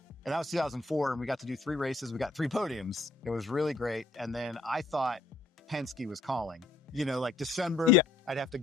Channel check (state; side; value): quieter; right; 3.6 dB